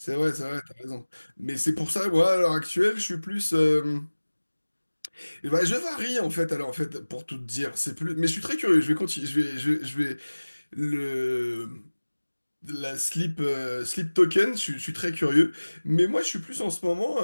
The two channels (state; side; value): inverted; both; correlation -1.00